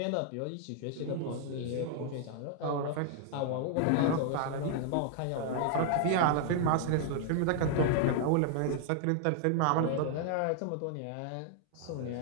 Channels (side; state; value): both; different; correlation -0.01